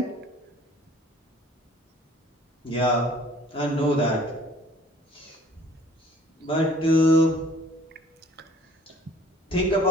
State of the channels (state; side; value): normal; both; correlation 0.54